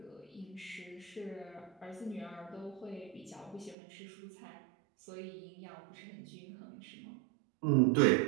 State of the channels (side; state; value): left; drops out; at 3.8 s